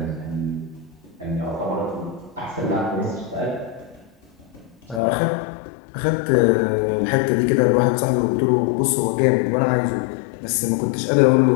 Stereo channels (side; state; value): right; drops out; at 5.0 s